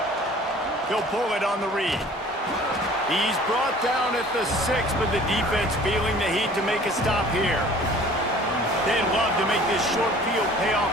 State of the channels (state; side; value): normal; both; correlation 0.49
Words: He'll pull it on the read. He's brought down at the 6, but the defense feeling the heat to make a stop here. They'd love to make this short field pay